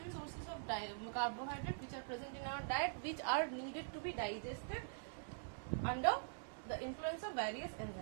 sources of carbohydrate which are present in our diet, which are needed to be digested under the influence of various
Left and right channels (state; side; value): silent; left; digital silence